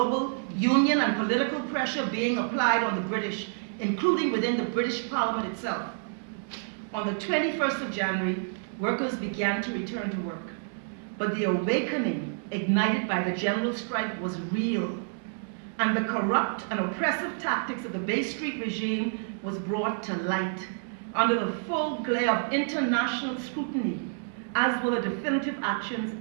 union and political pressure being applied on the British, including within the British Parliament itself. On the 21st of January, workers began to return to work. But the awakening ignited by the general strike was real. And the corrupt and oppressive tactics of the Bay Street regime was brought to light under the full glare of international scrutiny, as were the definitive actions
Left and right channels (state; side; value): silent; left; digital silence